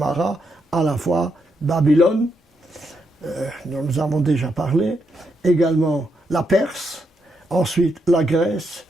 à la fois Babylone, dont nous avons déjà parlé, également la Perse, ensuite la Grèce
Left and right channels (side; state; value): both; normal; correlation 0.80